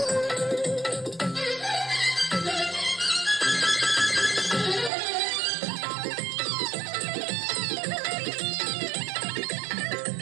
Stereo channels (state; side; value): drops out; left; at 4.9 s